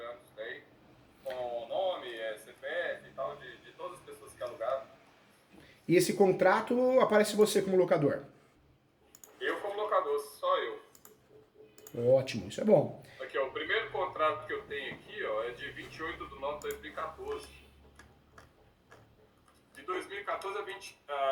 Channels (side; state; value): both; identical; correlation 1.00